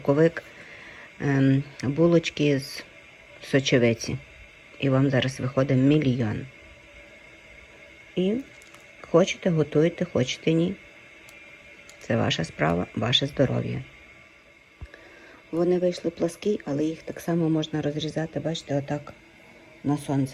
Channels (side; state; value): both; identical; correlation 1.00